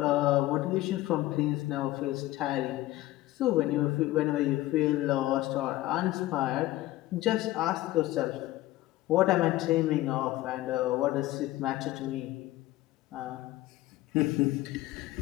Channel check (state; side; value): quieter; right; 16.6 dB